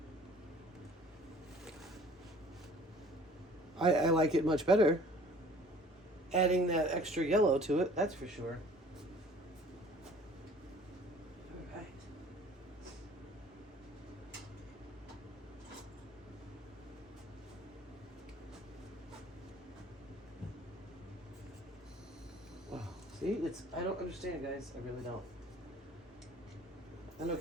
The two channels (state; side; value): normal; both; correlation 0.51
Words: I like it much better. Adding that extra yellow to it, that's for sure. All right. Wow. See, I don't understand, guys. I really don't. I know